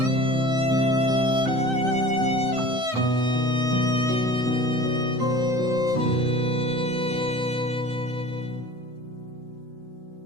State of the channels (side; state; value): left; late; 7.8 ms